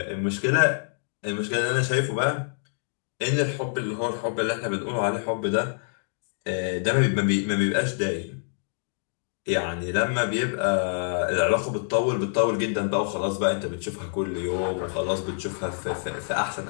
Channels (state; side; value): silent; right; digital silence